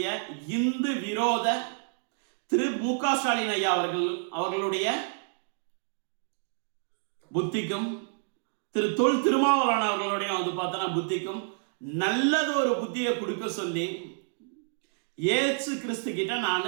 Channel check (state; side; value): silent; left; digital silence